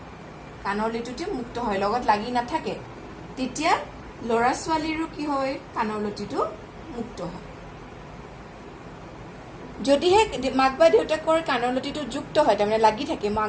কাণৰ লটিটো মুক্ত হয় লগত লাগি নাথাকে তেতিয়া লৰা ছোৱালীৰো কি হয় কাণৰ লটিটো মুক্ত হয় যদিহে মাক বা দেউতাকৰ কাণৰ লটিটো যুক্ত হয় তাৰমানে লাগি থাকে মই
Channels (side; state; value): both; identical; correlation 1.00